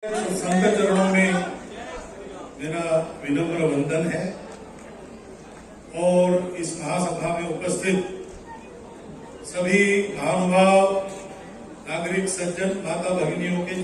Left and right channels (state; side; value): identical; both; correlation 1.00